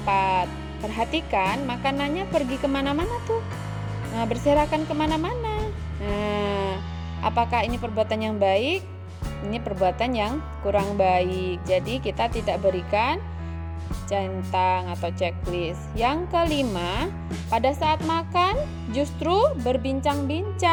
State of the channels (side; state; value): both; identical; correlation 1.00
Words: Perhatikan makanannya pergi kemana-mana tuh. Nah, berserakan kemana-mana. Nah, apakah ini perbuatan yang baik? Ini perbuatan yang kurang baik. Jadi kita tidak berikan centang atau checklist. Yang kelima, pada saat makan justru